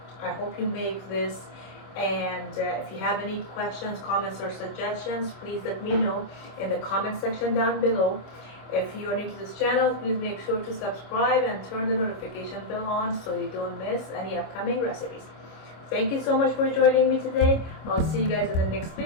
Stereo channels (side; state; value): right; late; 26 ms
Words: I hope you make this And if you have any questions, comments, or suggestions, please let me know in the comment section down below. If you are new to this channel, please make sure to subscribe and turn the notification bell on so you don't miss any upcoming recipes. Thank you so much for joining me today. I'll see you guys in the next